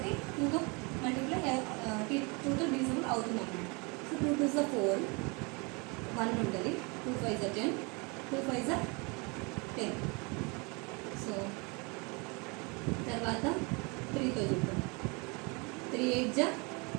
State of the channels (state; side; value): quieter; left; 29.9 dB